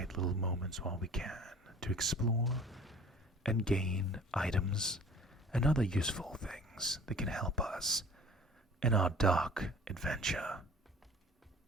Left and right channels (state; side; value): normal; both; correlation 0.47